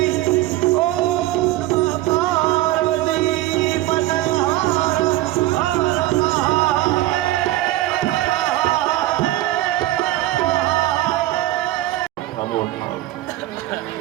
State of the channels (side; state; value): left; quieter; 16.0 dB